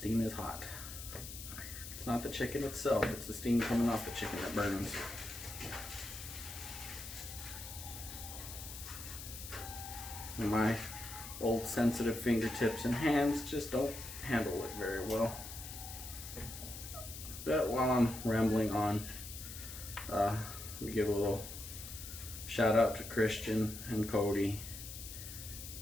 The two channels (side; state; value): left; noise; hiss, 10 dB below the sound